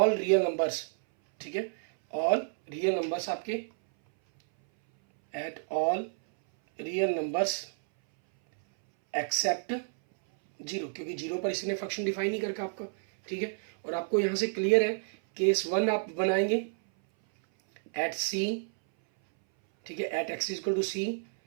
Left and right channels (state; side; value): silent; left; 58 dB below the other